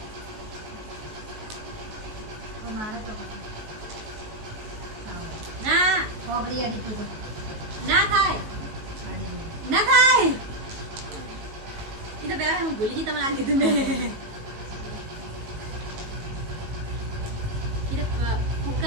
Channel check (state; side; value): late; left; 19 ms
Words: મારે તો પતે. ના ઓગળી અડી તું તો ના થાય અડી. ના થાય એ તો પેલા હું ભૂલી ગઈ તમને આ કીધું મેં એ તો